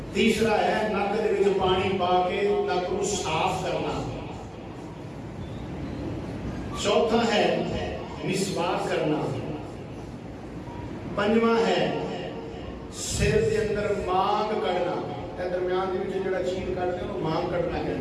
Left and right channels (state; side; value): identical; both; correlation 1.00